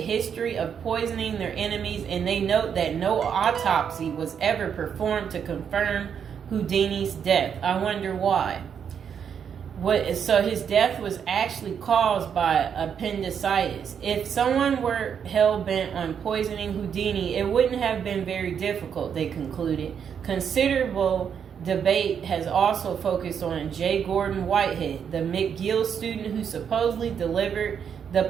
of poisoning their enemies, and they note that no autopsy was ever performed to confirm Houdini's death. I wonder why. So his death was actually caused by appendicitis. If someone were hell-bent on poisoning Houdini, it wouldn't have been very difficult, they concluded. Considerable debate has also focused on J. Gordon Whitehead, the McGill student who supposedly delivered the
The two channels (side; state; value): left; quieter; 7.7 dB